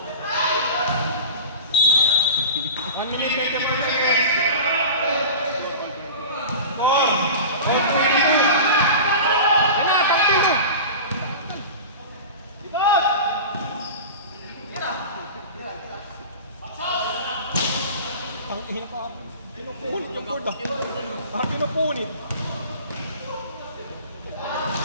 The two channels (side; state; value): both; inverted; correlation -0.33